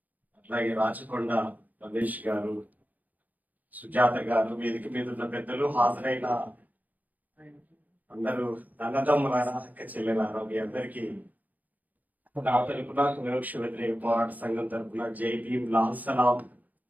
అట్లాగే రాచకొండ రమేష్ గారు, సుజాత గారు, వేదిక మీద ఉన్న పెద్దలు, హాజరైన అందరూ అన్నదమ్ములారా, అక్క చెల్లెలారా, మీ అందరికీ నా తరపున వివక్ష వ్యతిరేక పోరాట సంఘం తరపున జై భీమ్, లాల్ సలాం,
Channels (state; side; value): late; left; 0.080 ms